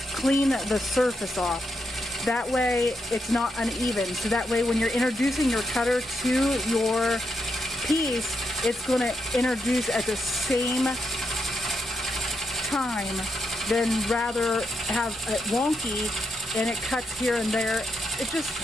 clean the surface off. That way it's not uneven. So that way when you're introducing your cutter to your piece, it's going to introduce at the same time than rather have it wonky and it cuts here and there. It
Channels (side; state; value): both; normal; correlation 0.82